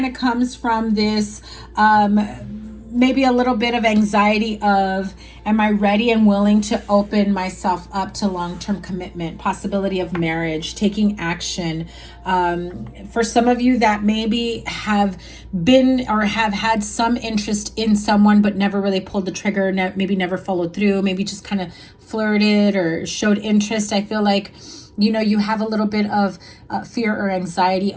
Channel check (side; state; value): both; identical; correlation 1.00